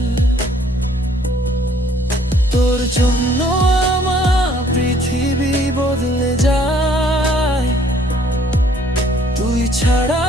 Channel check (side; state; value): both; normal; correlation 0.61